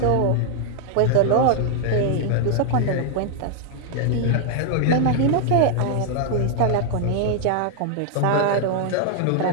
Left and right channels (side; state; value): both; different; correlation 0.00